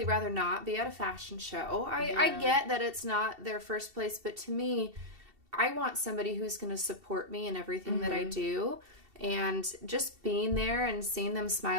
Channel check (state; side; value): late; left; 2.7 ms